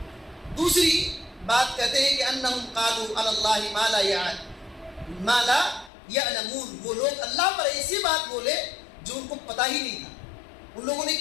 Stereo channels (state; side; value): drops out; right; at 5.9 s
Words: دوسری بات کہتے ہیں کہ انہم قالوا علی اللہ ما لا یعلمون. وہ لوگ اللہ پر ایسی بات بولے جو ان کو پتہ ہی نہیں تھا. ان لوگوں نے